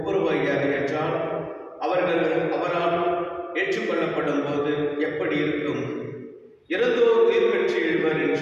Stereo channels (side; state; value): both; identical; correlation 1.00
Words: என்றால் அவர்கள் அவரால் ஏற்றுக்கொள்ளப்படும் போது எப்படி இருக்கும்? இறந்தோர் உயிர் பெற்று எழுவர்